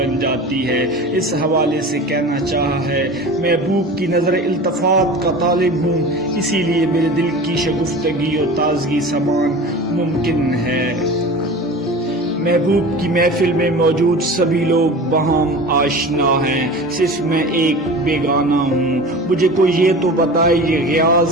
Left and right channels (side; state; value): both; normal; correlation 0.35